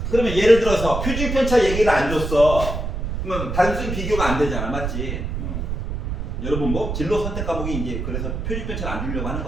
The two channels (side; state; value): right; noise; rumble, 3 dB below the sound